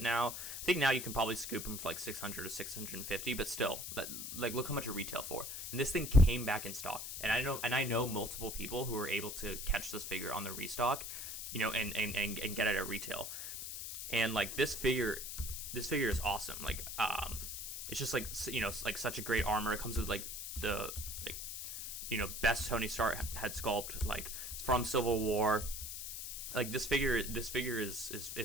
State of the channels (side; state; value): left; noise; hiss, 6 dB below the sound